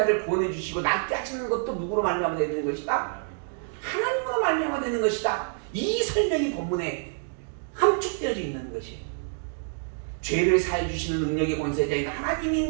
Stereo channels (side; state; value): left; silent; 60 dB below the other